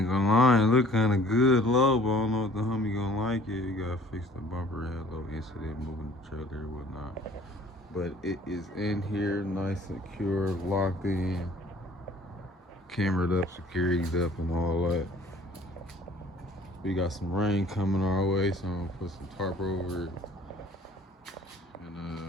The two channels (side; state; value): both; normal; correlation 0.53